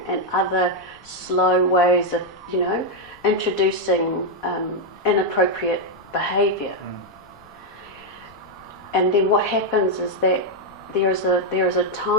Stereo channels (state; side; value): noise; left; rumble, 28 dB below the sound